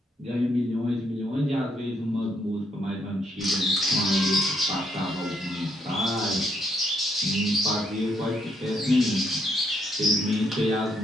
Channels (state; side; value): normal; both; correlation 0.74